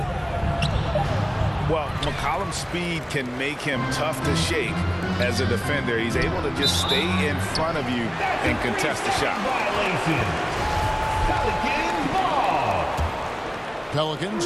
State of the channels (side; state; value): both; identical; correlation 1.00